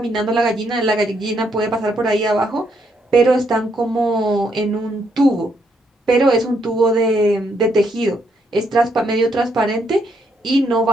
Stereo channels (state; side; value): normal; both; correlation 0.74